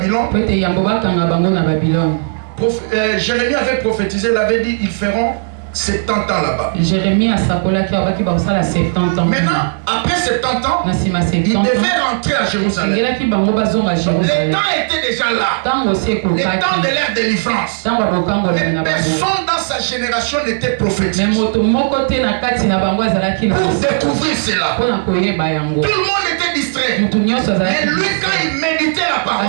Jérémie avait prophétisé, il avait dit, ils feront 70 ans là-bas. Jérémie a sakola qui a 70 ans. Maintenant, après 70 ans, il devait rentrer à Jérusalem. Les temps étaient déjà là. Les temps de l'ère de délivrance. Mais personne dans sa génération n'était prophétique. Pour découvrir cela, tout le monde était distrait. Mais lui, quand il méditait la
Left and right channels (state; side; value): silent; left; digital silence